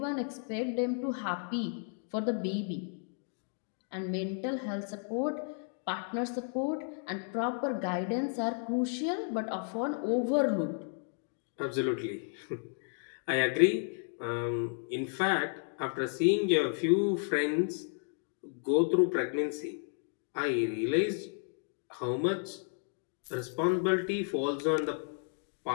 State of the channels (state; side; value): silent; right; 56 dB below the other